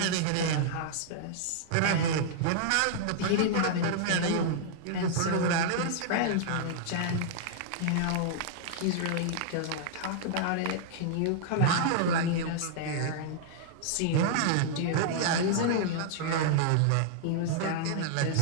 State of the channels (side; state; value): both; different; correlation -0.01